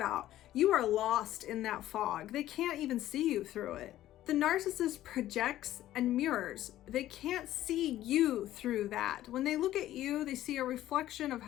You are lost in that fog. They can't even see you through it. The narcissist projects and mirrors. They can't see you through that. When they look at you, they see a reflection of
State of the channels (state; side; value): quieter; right; 13.7 dB